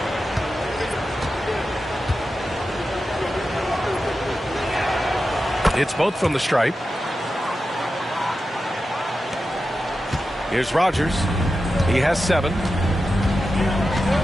It's both from the stripe. Here's Rogers. He has 7.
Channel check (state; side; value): normal; both; correlation 0.91